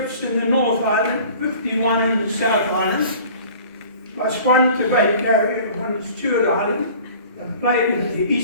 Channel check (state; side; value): inverted; both; correlation -0.46